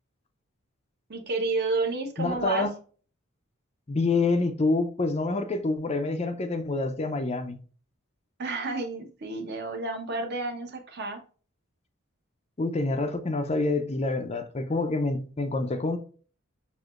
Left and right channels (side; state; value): both; normal; correlation 0.49